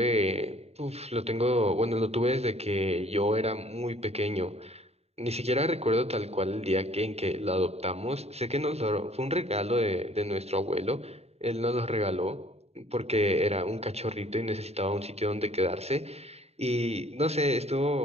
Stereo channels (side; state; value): left; late; 0.30 ms